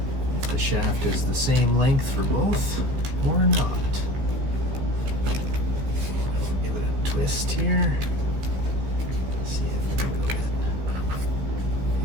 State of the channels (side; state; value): left; late; 15 ms